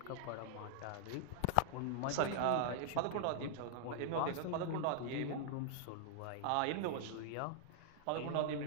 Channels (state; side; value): different; both; correlation -0.01